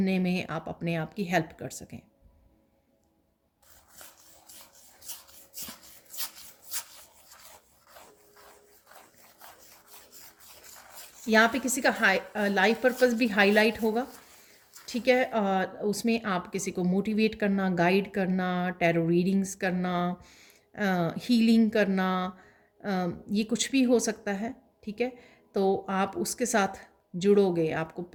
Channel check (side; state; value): both; identical; correlation 1.00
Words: में आप अपने आप की हेल्प कर सकें। यहाँ पे किसी का लाइफ पर्पस भी हाईलाइट होगा, ठीक है। उसमें आप किसी को मोटिवेट करना, गाइड करना, टैरो रीडिंग्स करना, हीलिंग करना, ये कुछ भी हो सकता है, ठीक है। तो आप उसके साथ जुड़ोगे, आपको